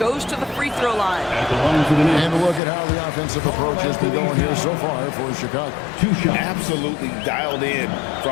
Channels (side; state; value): right; drops out; at 2.6 s